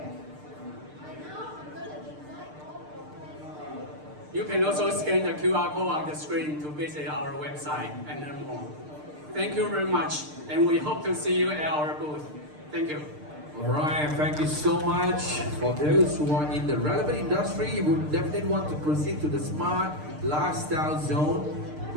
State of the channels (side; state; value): left; late; 6.6 ms